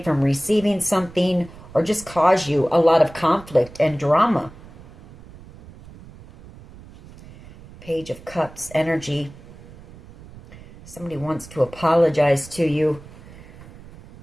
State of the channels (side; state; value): right; noise; rumble, 19 dB below the sound